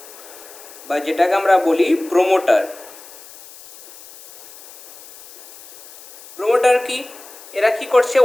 বা যেটাকে আমরা বলি প্রোমোটার। প্রোমোটার কি? এরা কি করছে?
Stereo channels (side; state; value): left; noise; hiss, 20 dB below the sound